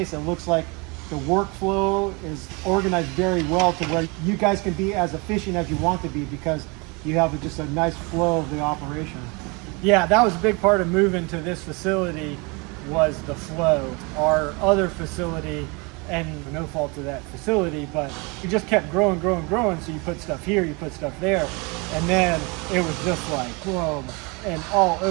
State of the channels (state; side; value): quieter; left; 29.2 dB